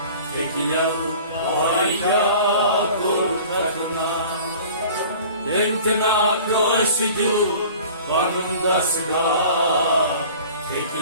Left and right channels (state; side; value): inverted; both; correlation -0.45